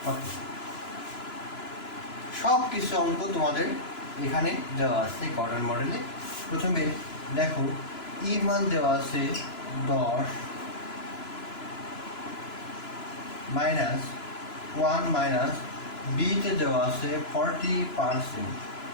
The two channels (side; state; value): right; late; 2.9 ms